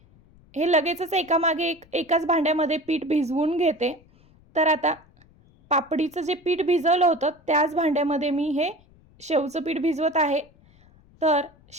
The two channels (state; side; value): noise; left; rumble, 29 dB below the sound